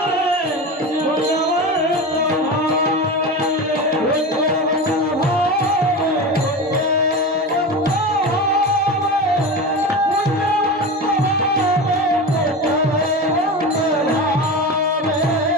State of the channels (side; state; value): both; normal; correlation 0.25